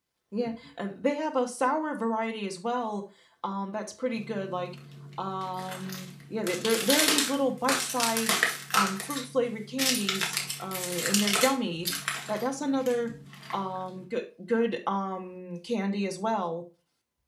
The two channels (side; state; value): both; identical; correlation 1.00